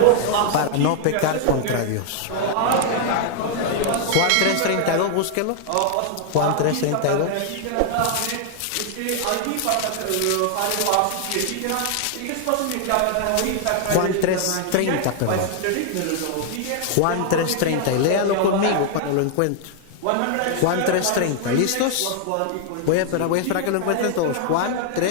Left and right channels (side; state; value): both; different; correlation 0.00